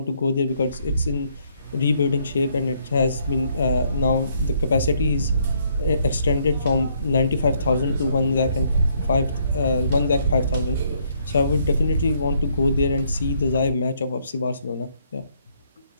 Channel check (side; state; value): both; inverted; correlation -0.70